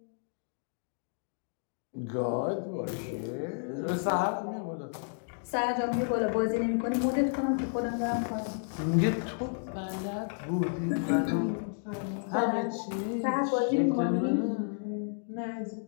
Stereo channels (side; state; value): right; silent; digital silence